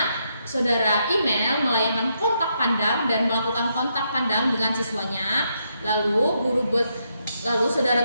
saudara Email melayangkan kontak pandang dan melakukan kontak pandang dengan siswanya. Lalu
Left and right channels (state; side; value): inverted; both; correlation -0.79